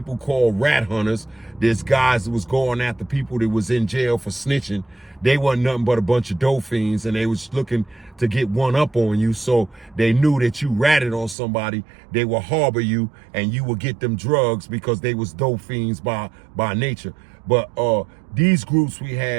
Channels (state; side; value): drops out; left; at 11.4 s